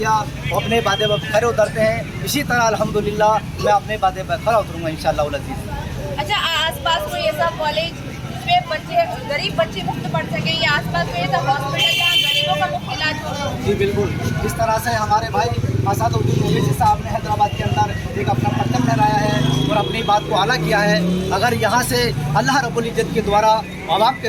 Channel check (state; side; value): identical; both; correlation 1.00